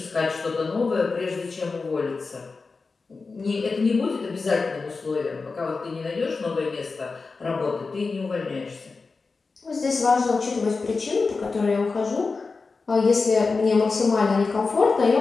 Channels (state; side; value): quieter; right; 4.2 dB